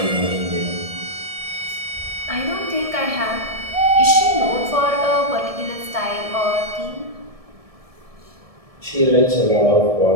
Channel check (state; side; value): late; left; 1.7 ms